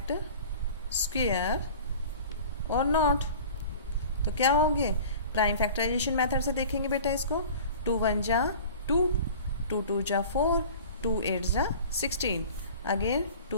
square और नॉट। तो क्या होंगे? प्राइम फैक्टराइजेशन मेथड से देखेंगे बेटा इसको। 2 1 जा 2, 2 2 जा 4, 2 8 जा 16, अगेन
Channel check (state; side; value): inverted; both; correlation -0.41